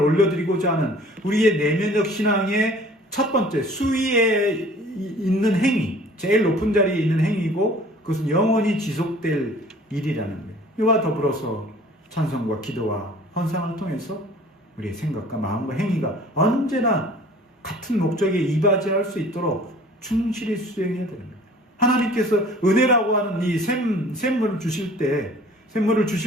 올려드리고자 하는 우리의 내면적 신앙의 첫 번째 수위에 있는 행위, 제일 높은 자리에 있는 행위고 그것은 영원히 지속될 일이라는 거예요. 이와 더불어서 찬송과 기도와 헌상을 통해서 우리의 생각과 마음과 행위가 언제나 같은 목적에 이바지할 수 있도록 충실히 수행해야 되는 거예요. 하나님께서 은혜라고 하는 이 샘물을 주실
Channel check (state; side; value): normal; both; correlation 0.49